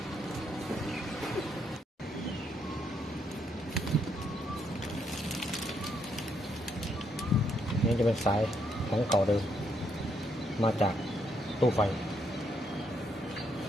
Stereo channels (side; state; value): both; normal; correlation 0.74